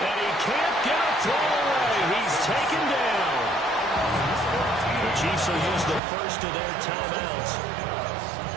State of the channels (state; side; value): drops out; left; at 6.0 s